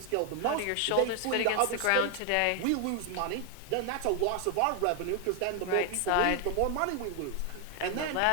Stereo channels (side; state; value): both; different; correlation 0.00